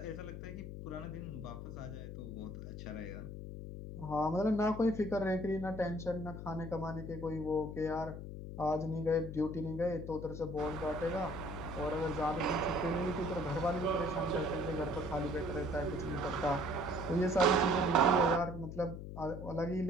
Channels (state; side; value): noise; left; hum, 8 dB below the sound